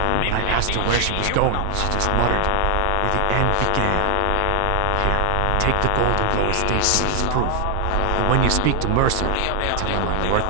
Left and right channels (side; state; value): both; different; correlation 0.00